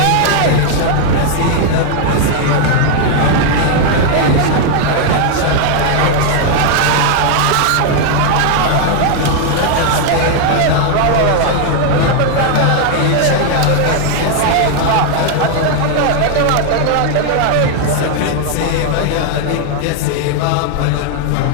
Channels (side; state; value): both; different; correlation 0.00